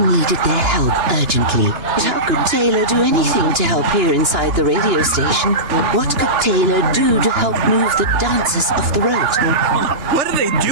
needed their help urgently. But how could Taylor do anything to help here inside the radio station? What could Taylor do to help move the dancers off the road? What are they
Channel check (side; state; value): left; late; 2.9 ms